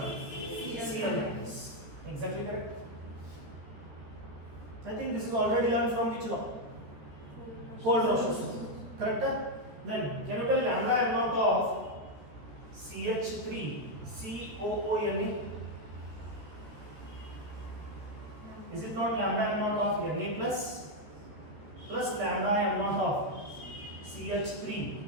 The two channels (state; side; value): late; left; 14 ms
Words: Cl minus. Exactly correct. I think this is already learned from which law? Kohl-Rausch's law. Correct? Then can you tell lambda m naught of CH3COONA? Is it not lambda m naught of Na plus lambda m naught of